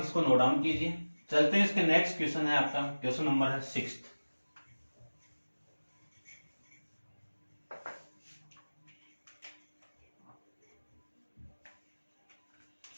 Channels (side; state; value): both; inverted; correlation -1.00